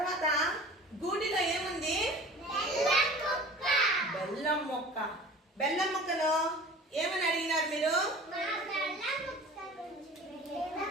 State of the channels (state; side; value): normal; both; correlation 0.41